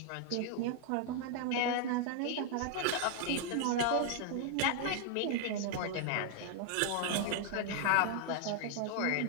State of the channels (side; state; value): both; different; correlation 0.00